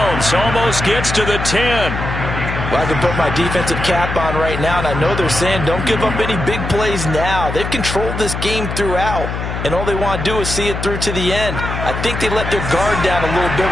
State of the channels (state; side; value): noise; left; hum, 5 dB below the sound